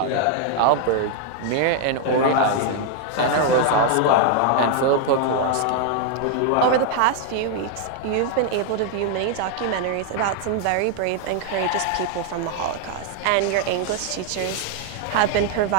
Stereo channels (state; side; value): different; both; correlation 0.00